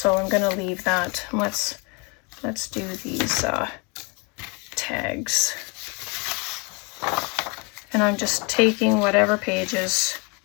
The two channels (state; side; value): quieter; right; 31.4 dB